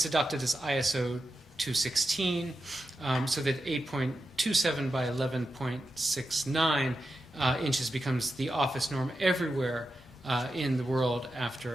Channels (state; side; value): normal; both; correlation 0.89